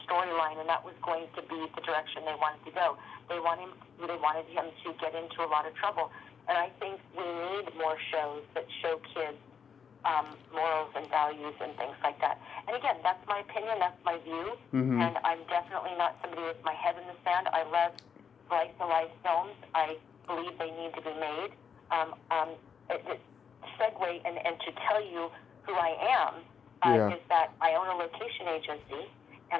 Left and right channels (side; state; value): right; quieter; 6.8 dB